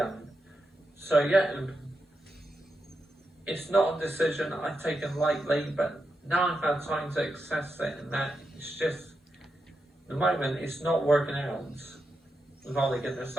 So yeah, it's not a decision I've taken lightly, but now I've had time to assess it, and that it's just, at the moment, it's not working out with Ole Gunnar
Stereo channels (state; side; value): normal; both; correlation 0.87